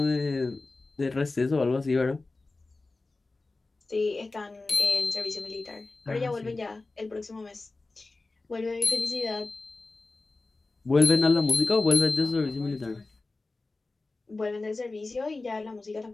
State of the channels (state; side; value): quieter; right; 3.4 dB